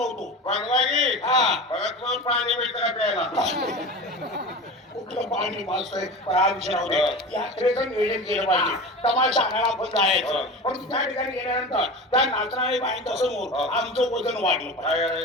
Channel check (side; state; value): both; normal; correlation 0.31